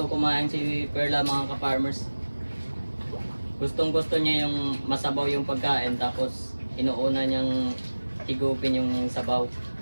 kumain si Perla mga ka-farmers. Gustong gusto niya yung masabaw yung pagkain, tapos inuuna niyang higupin yung sabaw.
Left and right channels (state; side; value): inverted; both; correlation -1.00